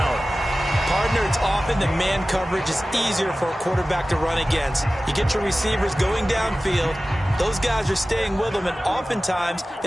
Partner, it's often the man coverage is easier for a quarterback to run against. You get your receivers going downfield. Those guys are staying with them, and oftentimes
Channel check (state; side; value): normal; both; correlation 0.96